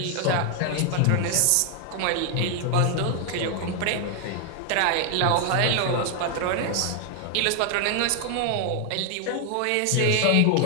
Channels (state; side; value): different; both; correlation 0.00